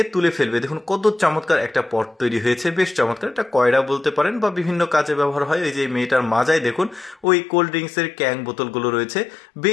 তুলে ফেলবে। দেখুন কত চমৎকার একটা পট তৈরি হয়েছে, বেশ চমৎকার। এটা কয়রা বলতে পারেন বা বিভিন্ন কাজে ব্যবহার হয়। এই যে মেয়েটার মাজায় দেখুন ওই কোল্ড ড্রিঙ্কসের ক্যাং বোতলগুলো রয়েছে,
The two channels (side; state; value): right; drops out; at 7.2 s